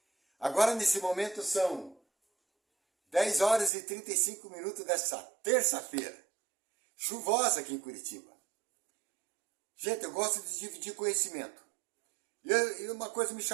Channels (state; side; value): drops out; left; at 3.7 s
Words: Agora, nesse momento, são 10 horas e 35 minutos dessa terça-feira, chuvosa aqui em Curitiba. Gente, eu gosto de dividir conhecimento. E uma coisa me